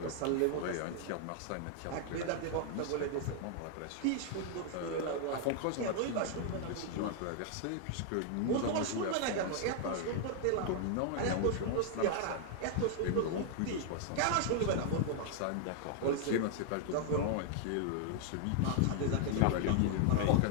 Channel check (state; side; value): different; both; correlation 0.00